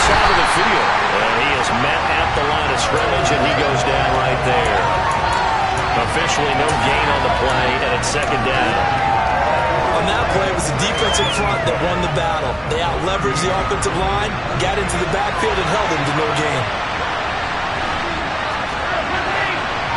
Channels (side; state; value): both; identical; correlation 1.00